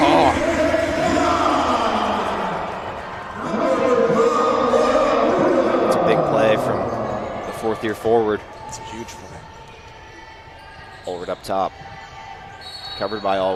It's a big play from the 4th-year forward. It's a huge play. Allward up top. Covered by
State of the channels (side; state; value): both; identical; correlation 1.00